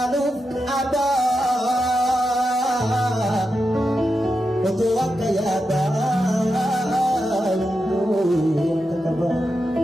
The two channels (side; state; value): both; normal; correlation 0.88